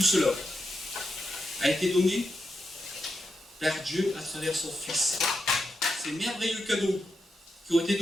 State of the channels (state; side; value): normal; both; correlation 0.86